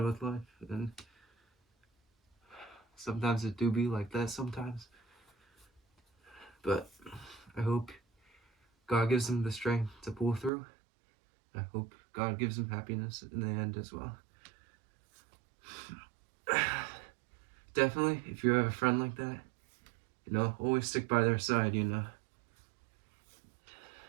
with life, and sometimes it do be like that sometimes. But I hope God gives him the strength to pull through. I hope God gives him happiness in the end as well. Definitely, if you have a friend like that, you know, always stick by their side, you know.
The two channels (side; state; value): left; drops out; at 10.5 s